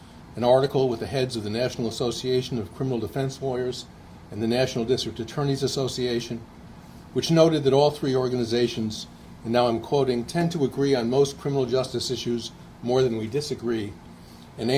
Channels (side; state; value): both; identical; correlation 1.00